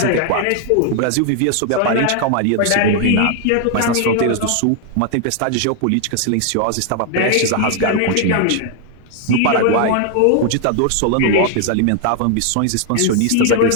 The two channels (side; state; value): both; different; correlation 0.00